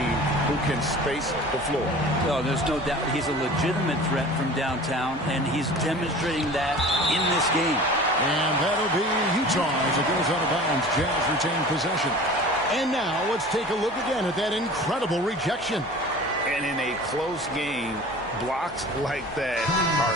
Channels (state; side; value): normal; both; correlation 0.41